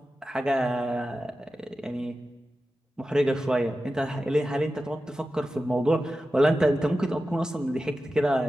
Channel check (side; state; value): both; normal; correlation 0.93